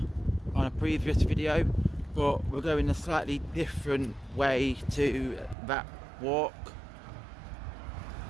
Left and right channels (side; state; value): left; drops out; at 5.6 s